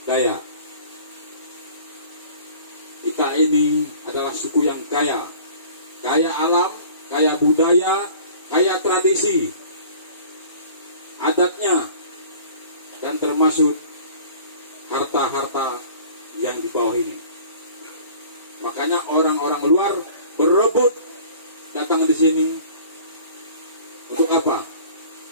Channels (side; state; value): both; inverted; correlation -0.47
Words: Dayak. Kita ini adalah suku yang kaya alam, kaya budaya, kaya tradisi, adatnya, dan termasuk harta-harta yang di bawah ini. Makanya orang-orang luar berebut datang di sini untuk apa?